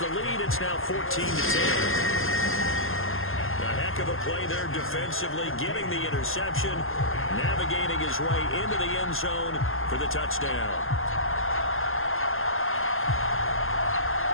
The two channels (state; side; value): late; right; 0.60 ms